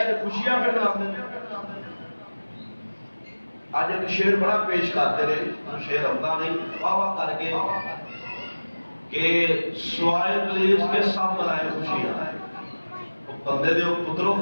خوشیاں پہ مناتے آج ایک شعر بڑا پیش کرتے رہے شعر ہوتا نہیں واہ واہ کر کے کہ سوائے ابلیس کے سب منائے خوشیاں بندے دے پتروں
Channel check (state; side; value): inverted; both; correlation -1.00